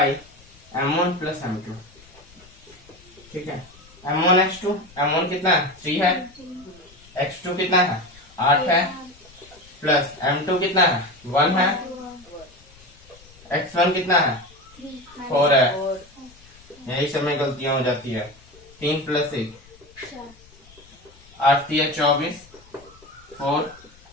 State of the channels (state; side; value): noise; left; rumble, 25 dB below the sound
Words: m1 plus m2। ठीक है, m1x2, m1 कितना है? 3 है, x2 कितना है? 8 है, प्लस m2 कितना है? 1 है, x1 कितना है? 4 है। यही समय गलतियां हो जाती है। 3 प्लस 1 8 3 24, 4